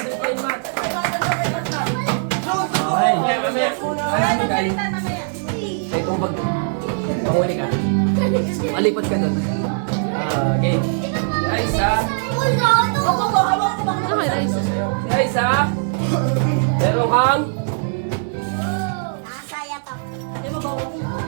kayo ni Mat. Okay. Ay, hindi kayo. Kaya itong bag. Mahuli ka. Malipat ka dun. Okay. Guys, ha? Guys, ha? Meron kang...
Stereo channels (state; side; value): silent; left; digital silence